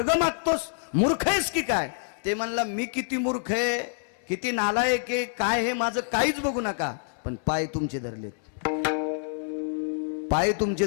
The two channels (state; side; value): silent; right; 60 dB below the other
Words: मागतोस. मूर्ख आहेस की काय? ते म्हणला मी किती मूर्ख आहे, किती नालायक आहे, काय हे माझं काहीच बघू नका, पण पाय तुमचे धरलेत, पाय तुमचे